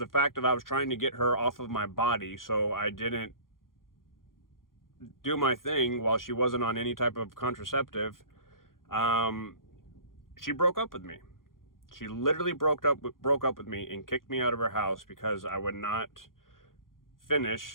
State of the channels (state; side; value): late; right; 0.91 ms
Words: fact that I was trying to get her off of my body, so I didn't do my thing while she wasn't on any type of contraceptive, she broke up with me. She literally broke up with me and kicked me out of her house because I would not